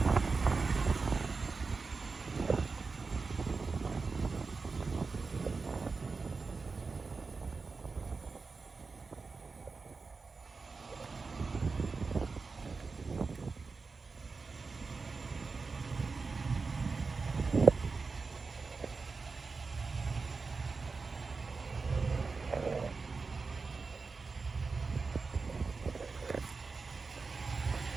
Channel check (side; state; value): left; quieter; 4.4 dB